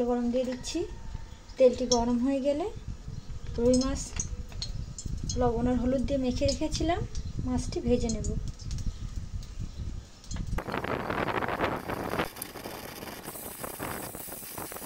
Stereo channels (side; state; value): both; identical; correlation 1.00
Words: গরম দিয়ে দিচ্ছি। তেলটি গরম হয়ে গেলে রুই মাছ লবণ আর হলুদ দিয়ে মেখে রেখেছিলাম, মাছটি ভেজে নেব।